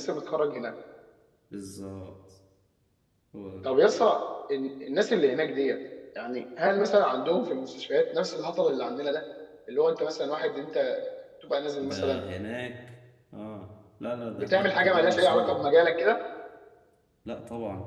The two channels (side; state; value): both; identical; correlation 1.00